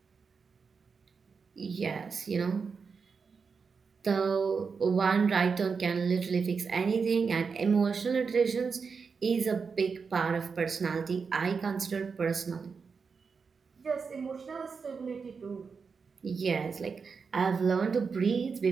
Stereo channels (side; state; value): left; quieter; 5.4 dB